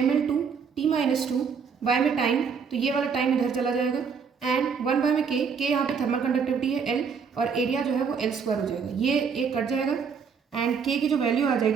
by में टाइम, तो ये वाला टाइम इधर चला जाएगा एंड 1 बाय में के यहाँ पे थर्मल कंडक्टिविटी है L और एरिया जो है वो L² हो जाएगा। ये एक कट जाएगा एंड के की जो वैल्यू आ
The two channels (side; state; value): left; quieter; 6.2 dB